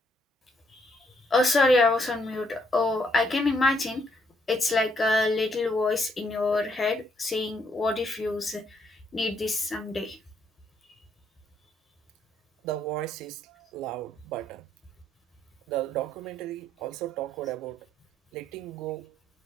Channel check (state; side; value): normal; both; correlation 0.72